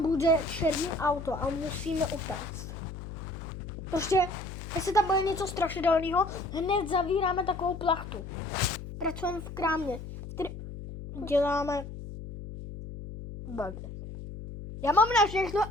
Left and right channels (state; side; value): noise; left; hum, 10 dB below the sound